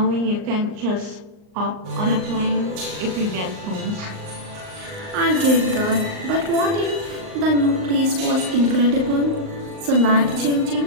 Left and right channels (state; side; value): late; left; 38 ms